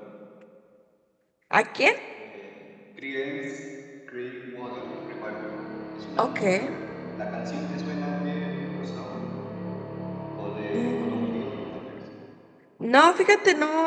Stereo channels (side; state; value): both; identical; correlation 1.00